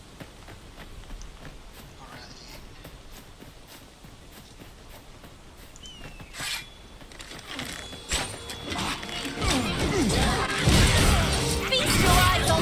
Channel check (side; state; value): both; identical; correlation 1.00